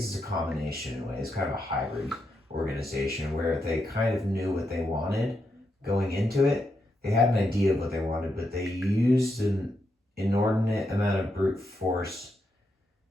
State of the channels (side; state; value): both; normal; correlation 0.82